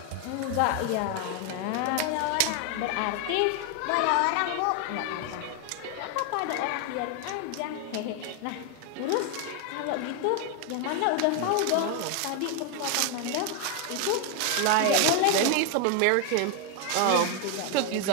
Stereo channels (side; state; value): both; different; correlation 0.01